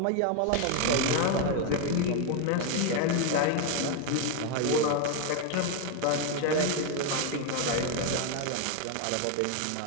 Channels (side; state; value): both; different; correlation 0.01